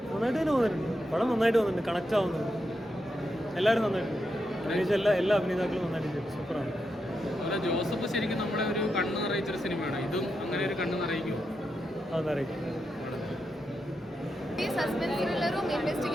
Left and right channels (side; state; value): both; normal; correlation 0.85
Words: നന്നായിട്ട് തന്നെ തോന്നുന്നുണ്ട്. പടം നന്നായിട്ട് തോന്നുന്നുണ്ട്, കണക്റ്റ് ആവുന്നുണ്ട്. എല്ലാവരും നന്നായിട്ടുണ്ട്. അഭിനയിച്ച എല്ലാ അഭിനേതാക്കളും നന്നായിട്ട് ചെയ്തു. സൂപ്പറാണ്. ജോസഫ് ശരിക്കും നമ്മളെ ഒരു കണ്ണ് നിറയിച്ചൊരു സിനിമയാണ്. ഇതും അങ്ങനെ ഒരു കണ്ണ് നിറയിക്കുമോ? അതറിയിക്കും. സസ്പെൻസ് ത്രില്ലറും